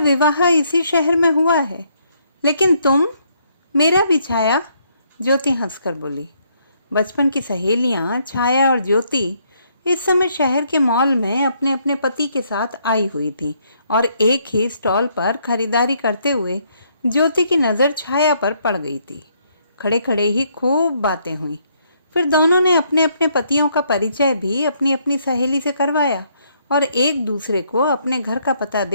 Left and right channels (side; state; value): both; inverted; correlation -0.71